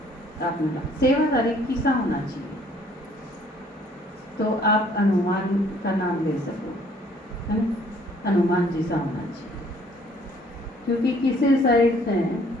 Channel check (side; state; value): both; normal; correlation 0.60